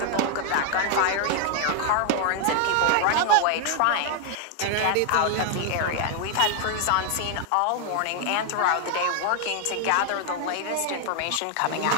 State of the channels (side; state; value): both; different; correlation 0.00